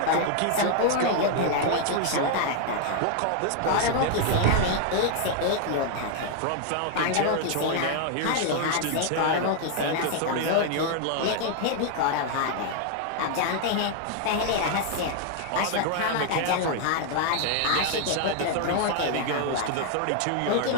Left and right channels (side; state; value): both; different; correlation 0.00